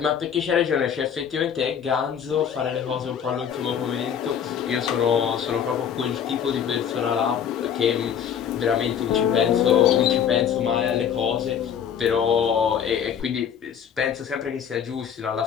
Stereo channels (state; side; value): quieter; right; 8.3 dB